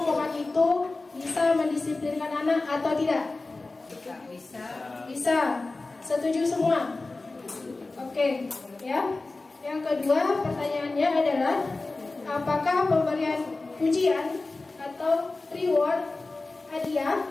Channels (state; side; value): quieter; right; 3.4 dB